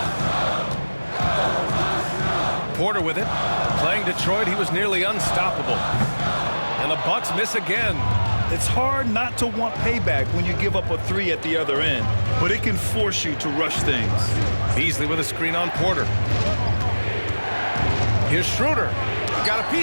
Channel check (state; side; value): inverted; both; correlation -1.00